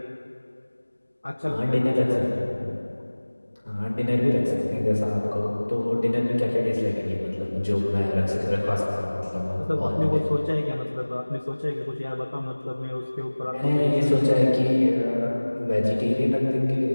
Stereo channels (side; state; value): both; inverted; correlation -1.00